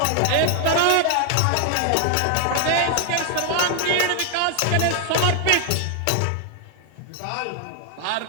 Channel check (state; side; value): different; both; correlation 0.00